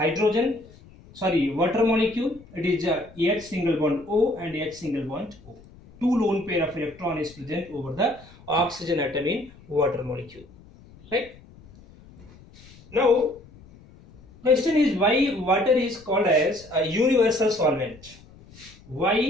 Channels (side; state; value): left; noise; rumble, 23 dB below the sound